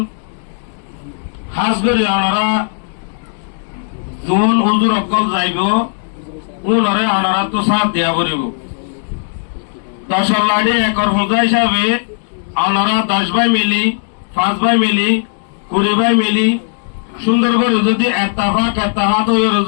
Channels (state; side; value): silent; right; digital silence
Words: খাস করি অনরা যোন হুজুর অকল যাইব উনরে অনারা তো সাথ দিয়া করিব 10 লাড়ি একর হুজা হিসাবে অনারা 10 ভাই মিলি 5 ভাই মিলি 20 ভাই মিলি সুন্দর করে যদি এত্তাহাত হয়ে